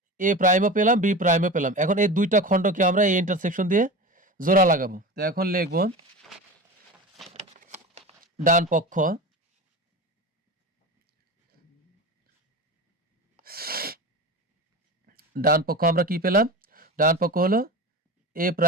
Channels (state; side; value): normal; both; correlation 0.29